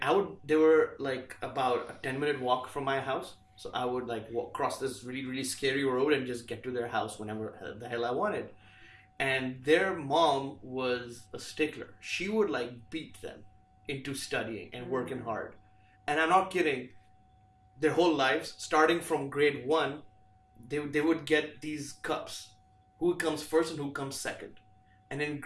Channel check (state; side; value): identical; both; correlation 1.00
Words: they were like about a 10-minute walk from my house. So I would like cross this really, really scary road and just get to their house whenever the hell I wanted. And their mom was a stickler. She would like beat them into studying and working hard. And I'm not kidding. Their whole lives, starting from grade 1, they would get these cups. Who comes first and who comes second. And in